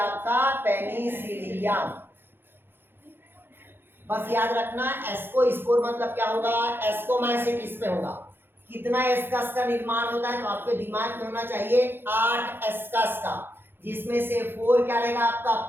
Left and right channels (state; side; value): late; left; 0.10 ms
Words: पेनिसिलियम। बस याद रखना एस्कोस्पोर मतलब क्या होगा? एस्कोमाइसिटिस में होगा। कितना एस्कस का निर्माण होता है तो आपके दिमाग में होना चाहिए 8 एस्कस का, जिसमें से 4 क्या रहेगा आपका